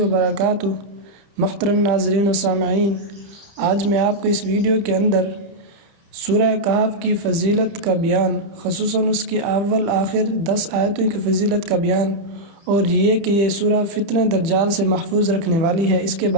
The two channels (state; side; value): late; left; 30 ms